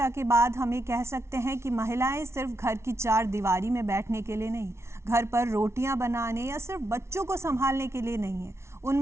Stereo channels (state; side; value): late; left; 0.13 ms